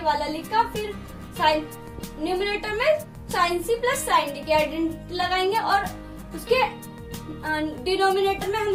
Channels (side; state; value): both; identical; correlation 1.00